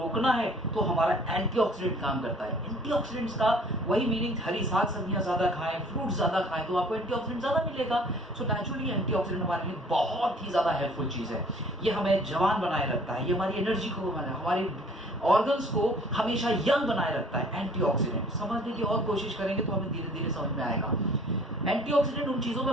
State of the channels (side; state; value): both; normal; correlation 0.54